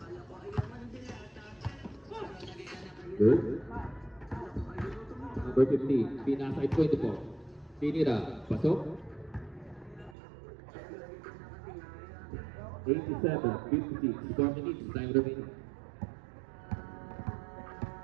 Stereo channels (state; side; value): drops out; left; at 10.2 s